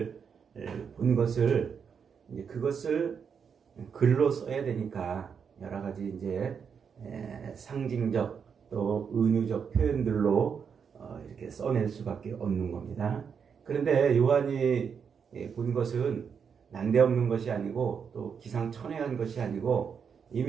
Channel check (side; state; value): left; quieter; 6.7 dB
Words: 본 것을 그것을 글로 써야 되니까 여러 가지 이제 상징적 또 은유적 표현들로 이렇게 써낼 수밖에 없는 겁니다. 그런데 요한이 본 것은 난데없는 것이 아니고 또 기상천외한 것이 아니고